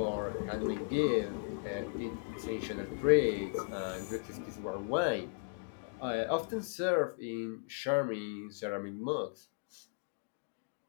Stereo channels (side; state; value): right; silent; digital silence